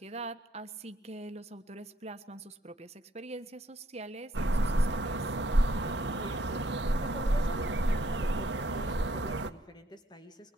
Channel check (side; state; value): both; normal; correlation 0.69